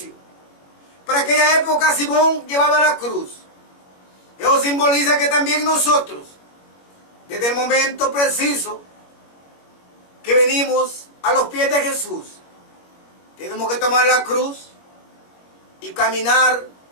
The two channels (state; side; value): late; right; 21 ms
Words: Para aquella época Simón llevaba la cruz. Eso simboliza que también nosotros, desde el momento preciso que venimos a los pies de Jesús, tenemos que tomar la cruz y caminar